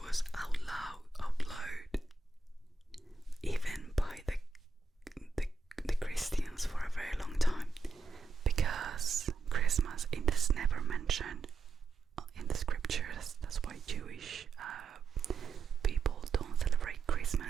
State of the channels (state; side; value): quieter; left; 4.0 dB